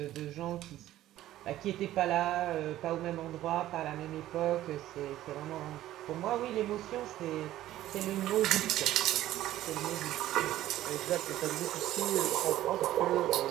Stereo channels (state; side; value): quieter; left; 14.0 dB